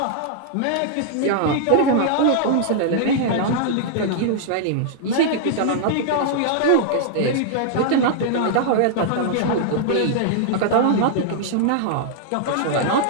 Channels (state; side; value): different; both; correlation -0.01